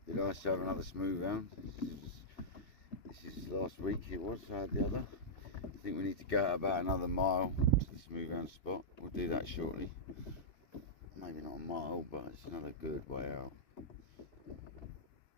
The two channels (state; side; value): late; right; 2.6 ms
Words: Be nice to have another smooth round. This is last week it was, I had the other. I think we need to go out about another mile to the smooth round spot. We'll do that shortly. Maybe not a mile, but it's another good way out.